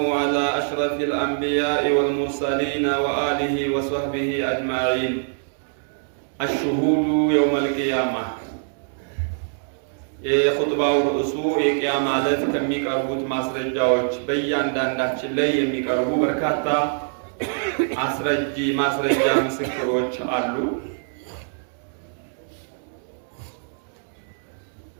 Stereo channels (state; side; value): silent; left; digital silence